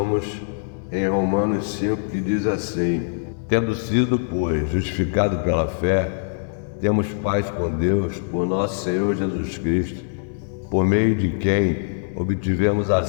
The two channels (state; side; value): silent; right; 64 dB below the other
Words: em Romanos 5, que diz assim: tendo sido, pois, justificado pela fé, temos paz com Deus por nosso Senhor Jesus Cristo, por meio de quem obtivemos